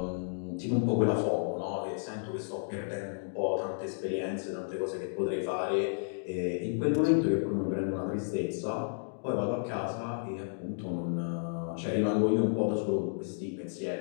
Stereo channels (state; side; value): silent; right; digital silence